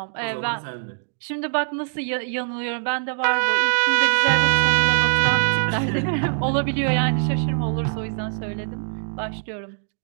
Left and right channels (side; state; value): left; silent; 64 dB below the other